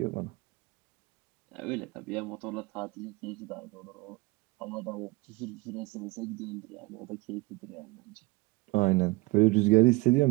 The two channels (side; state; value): left; quieter; 22.8 dB